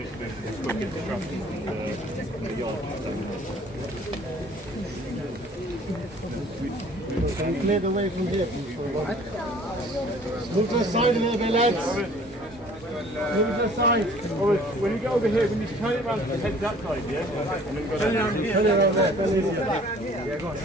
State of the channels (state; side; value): normal; both; correlation 0.53